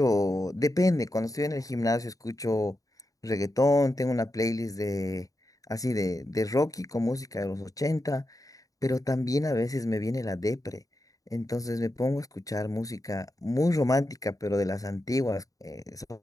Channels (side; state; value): right; late; 0.17 ms